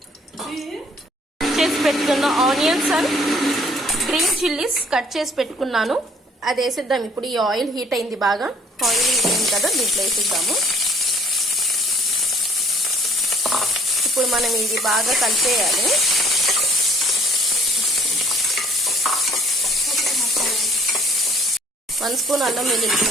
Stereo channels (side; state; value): both; normal; correlation 0.59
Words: చేసి పెట్టుకున్న onions and green chillies cut చేసి పెట్టుకున్నాను. అది వేసిద్దాం. ఇప్పుడు ఈ ఆయిల్ హీట్ అయింది, బాగా ఆయిల్ హీట్ అయింది కదా, దీంట్లో వేసిద్దాము. ఇప్పుడు మనం ఇది బాగా కలిపేయాలి. వన్ స్పూన్ అల్లం వెల్లుల్లి